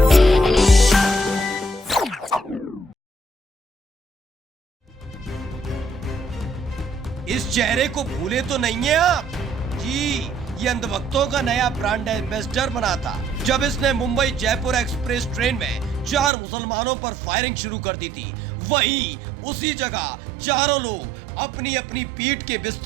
इस चेहरे को भूले तो नहीं है आप जी। ये अंधभक्तों का नया ब्रांड एम्बेसडर बना था जब इसने मुंबई जयपुर एक्सप्रेस ट्रेन में 4 मुसलमानों पर फायरिंग शुरू कर दी थी। वहीं उसी जगह चारों लोग अपनी अपनी पीठ के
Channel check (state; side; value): drops out; left; at 16.3 s